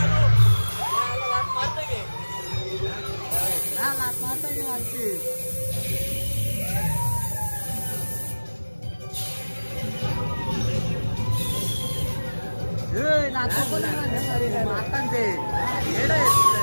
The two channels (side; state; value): both; inverted; correlation -1.00